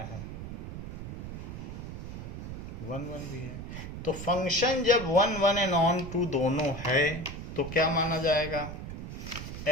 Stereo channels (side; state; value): right; noise; rumble, 8 dB below the sound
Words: है, 1 1 भी है। तो फंक्शन जब 1 1 एंड ऑन टू दोनों है तो क्या माना जाएगा,